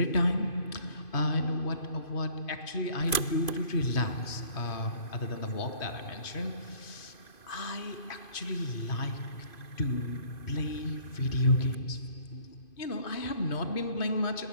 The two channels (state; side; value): late; right; 2.5 ms